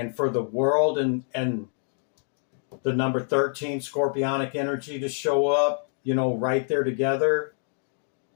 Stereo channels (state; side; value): silent; right; 61 dB below the other